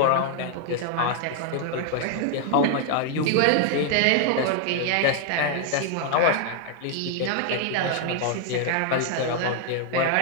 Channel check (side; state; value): both; different; correlation 0.00